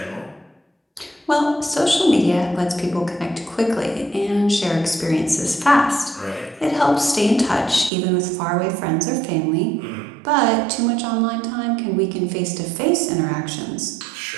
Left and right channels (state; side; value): drops out; left; at 7.9 s